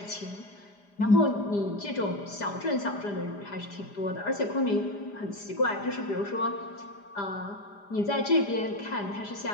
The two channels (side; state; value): right; late; 4.9 ms